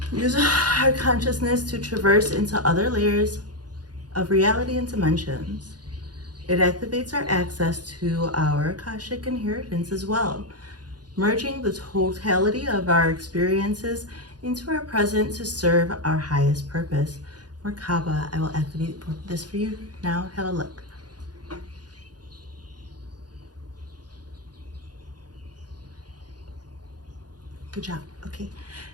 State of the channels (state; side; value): late; left; 0.69 ms